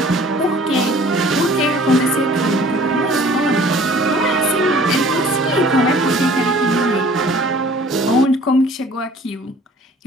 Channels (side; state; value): both; normal; correlation 0.51